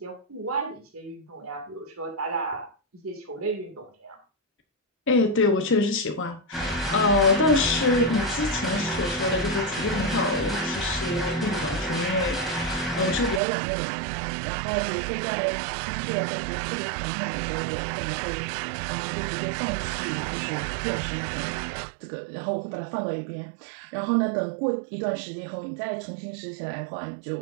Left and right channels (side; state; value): left; drops out; at 13.4 s